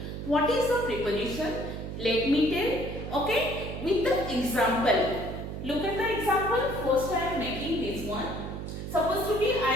What is a preposition? Let me tell, okay, with the example. Look at the example. First I am making this one. Suppose to be I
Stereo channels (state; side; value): noise; right; hum, 7 dB below the sound